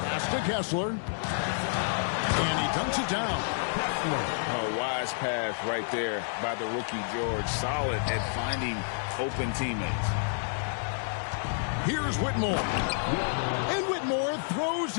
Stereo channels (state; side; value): silent; right; digital silence